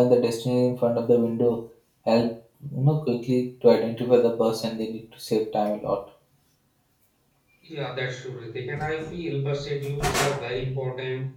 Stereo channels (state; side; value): identical; both; correlation 1.00